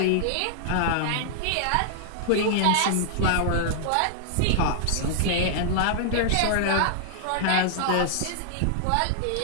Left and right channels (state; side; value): different; both; correlation -0.01